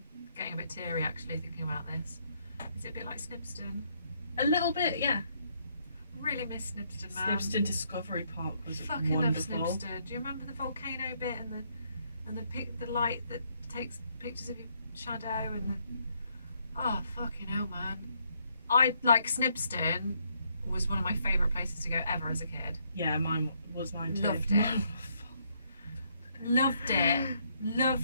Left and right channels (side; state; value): both; inverted; correlation -0.72